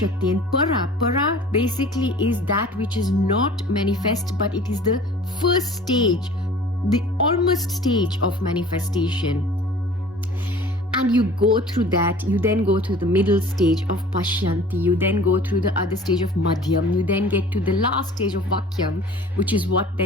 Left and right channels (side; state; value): both; normal; correlation 0.46